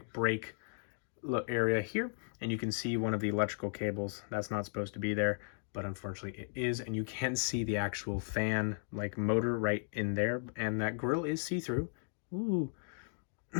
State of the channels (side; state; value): right; silent; 54 dB below the other